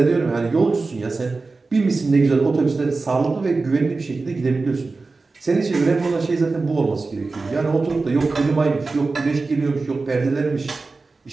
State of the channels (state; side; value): quieter; left; 3.8 dB